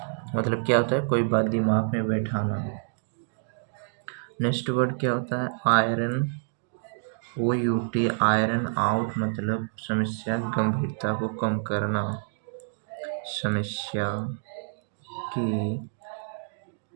मतलब क्या होता है? कोई बात दिमाग में बैठाना. नेक्स्ट वर्ड क्या होता है? आयरन, OUT, आयरन आउट मतलब समस्या की गंभीरता को कम करना. समस्या की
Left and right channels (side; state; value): left; silent; digital silence